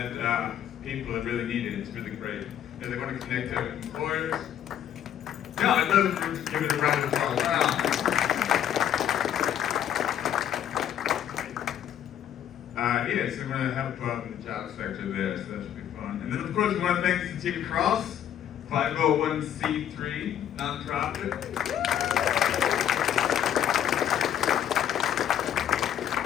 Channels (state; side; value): quieter; right; 10.2 dB